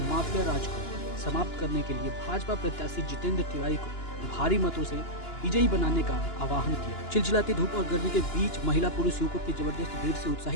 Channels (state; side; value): late; right; 2.9 ms